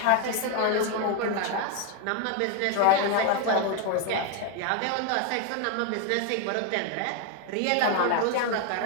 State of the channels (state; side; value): different; both; correlation 0.01